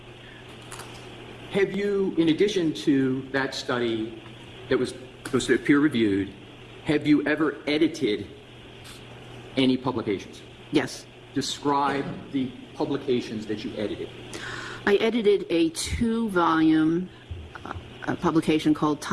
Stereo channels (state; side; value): identical; both; correlation 1.00